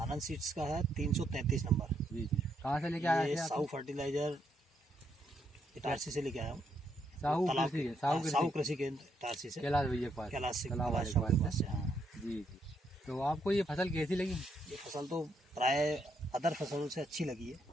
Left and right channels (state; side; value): normal; both; correlation 0.75